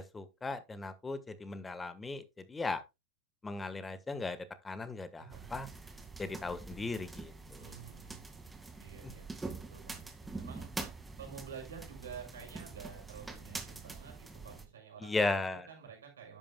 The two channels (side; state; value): both; normal; correlation 0.80